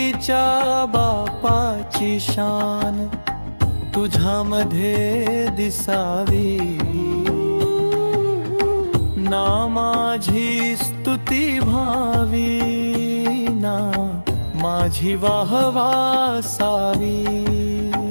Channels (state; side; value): inverted; both; correlation -1.00